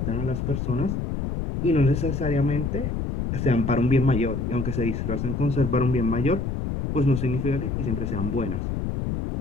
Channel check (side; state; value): left; noise; rumble, 2 dB below the sound